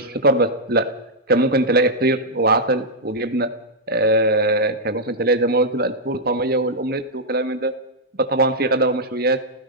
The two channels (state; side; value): normal; both; correlation -0.05